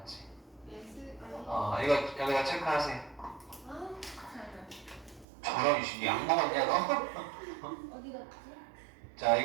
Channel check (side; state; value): left; drops out; at 5.2 s